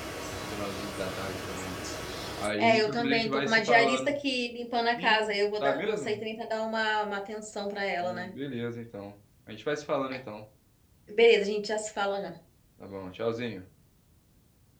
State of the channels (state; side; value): identical; both; correlation 1.00